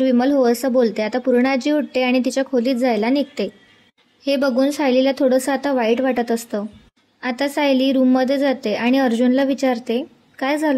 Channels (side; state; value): both; identical; correlation 1.00